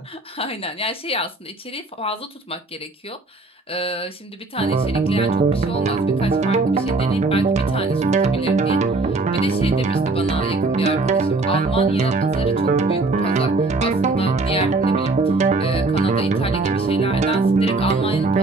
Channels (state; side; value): quieter; left; 3.3 dB